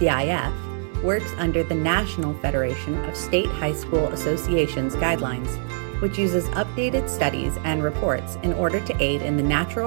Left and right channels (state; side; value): silent; left; digital silence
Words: works under the National Federation of State High School Associations guidelines, which uses updated studies and reports in order to aid in the